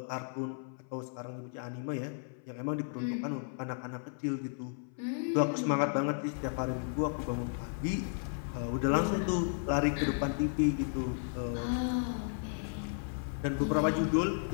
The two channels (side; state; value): right; silent; 55 dB below the other